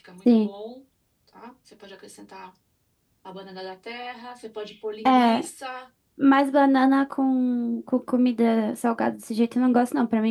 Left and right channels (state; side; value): identical; both; correlation 1.00